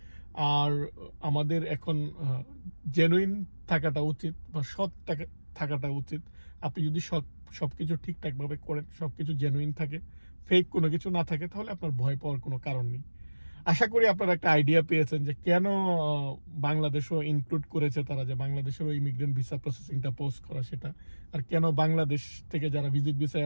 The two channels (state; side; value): inverted; both; correlation -1.00